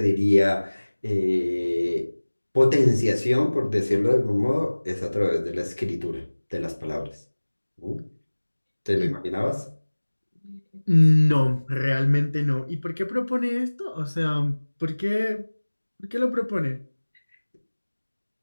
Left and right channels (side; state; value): both; inverted; correlation -1.00